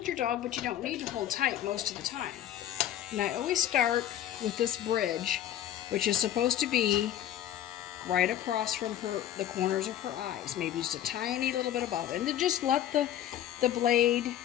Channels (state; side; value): quieter; right; 11.7 dB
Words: your dog, but you don't need to hold tight most of the time. And I always start with this bridge, which is supposed to be right across from the corners of her eyes, maybe just a tiny little bit above. And then just let the blade,